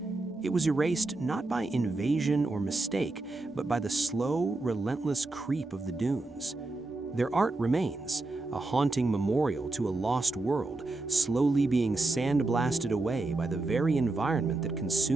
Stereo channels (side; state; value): left; quieter; 3.1 dB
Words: It was erased not by invasion or mistake, but by the slow, relentless creep of the dunes. Their art remains, a haunting memorial to a lost world, slowly being sandblasted away by the very environment that